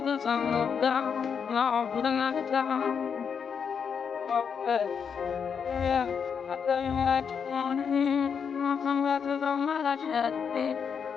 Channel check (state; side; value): quieter; right; 6.8 dB